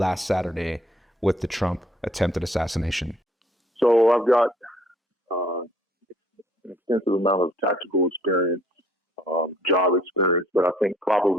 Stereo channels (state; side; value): normal; both; correlation 0.60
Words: Saturday with the Trump attempted assassination. So I've got an extensive amount of tactical experience, job experience, but I think